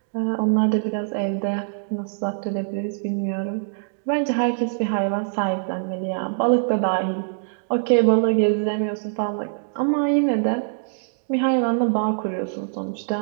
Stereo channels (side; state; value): left; silent; digital silence